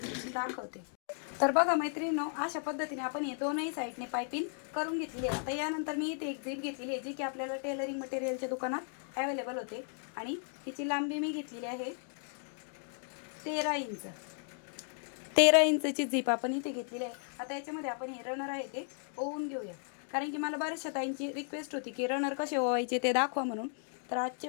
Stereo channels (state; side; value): silent; right; 54 dB below the other